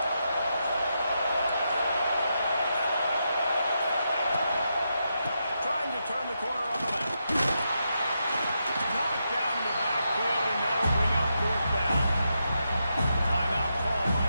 Trying to turn the corner on the left. Knocked down in the backfield, and that'll bring up 4th down. Timeout call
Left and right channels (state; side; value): inverted; both; correlation -0.84